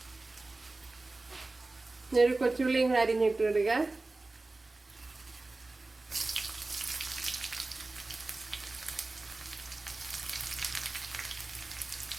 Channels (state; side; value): quieter; left; 3.2 dB